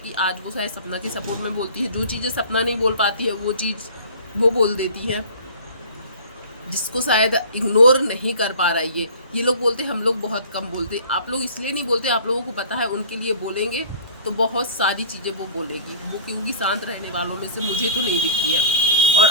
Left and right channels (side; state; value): both; inverted; correlation -0.44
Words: आज वो शायद सपना के सपोर्ट में बोलती है। जो चीज़ें सपना नहीं बोल पाती है वो चीज़ वो बोल देती है, जिसको शायद इग्नोर नहीं कर पा रहा है। ये लोग बोलते हम लोग बहुत कम बोलते। आप लोग इसलिए नहीं बोलते, आप लोगों को पता है उनके लिए बोलेंगे तो बहुत सारी चीज़ें वो बोलेगी। वो क्योंकि शांत रहने वालों में से मुझे तो नहीं दिखती है। और